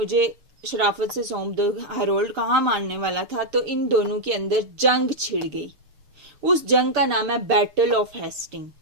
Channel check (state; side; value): late; left; 6.7 ms